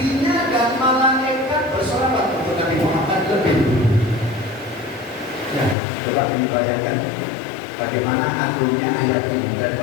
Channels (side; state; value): right; drops out; at 5.8 s